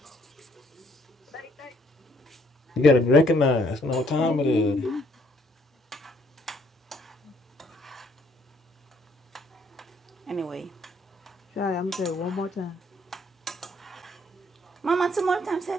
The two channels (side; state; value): both; normal; correlation 0.66